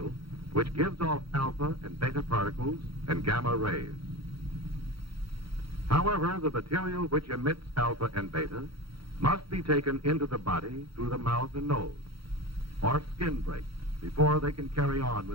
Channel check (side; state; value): left; late; 0.75 ms